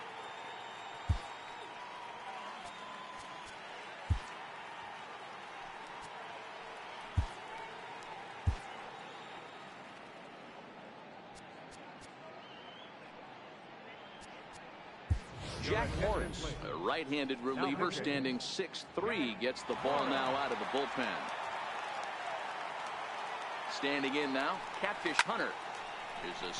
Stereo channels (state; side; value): identical; both; correlation 1.00